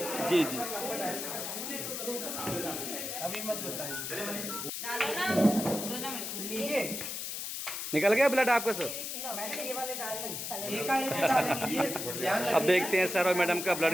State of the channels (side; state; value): left; noise; hiss, 5 dB below the sound